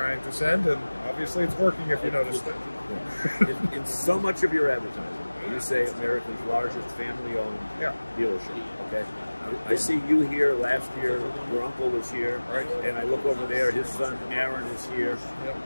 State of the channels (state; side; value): inverted; both; correlation -1.00